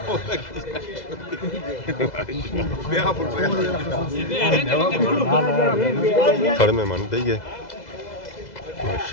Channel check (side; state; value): right; late; 2.0 ms